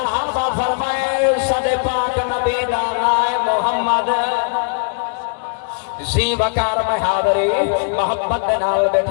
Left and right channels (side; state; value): right; quieter; 38.6 dB